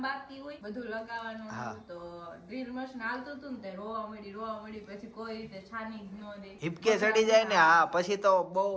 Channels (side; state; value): both; identical; correlation 1.00